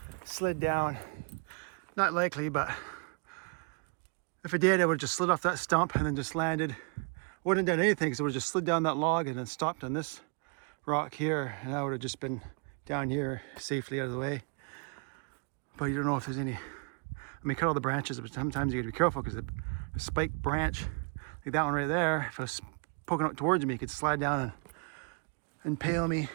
slid down. Not likely, but if it did, it would have just slid off that stump and then just landed. Wouldn't have done anything because it would have just slid down that log and then stopped on this rock here, and I would have just been down here safely out of the way. But you don't know if there's any. I mean, cut all the branches, but sometimes you got to be careful because a spiked branch, like that one right there, if it was poking out towards me, it could slide down and impale me.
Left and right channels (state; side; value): quieter; left; 36.2 dB